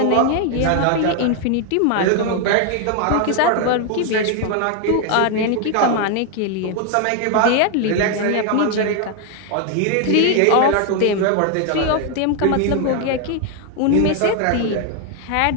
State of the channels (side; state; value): both; different; correlation 0.00